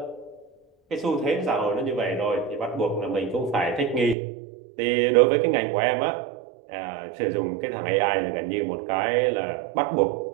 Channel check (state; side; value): drops out; left; at 4.2 s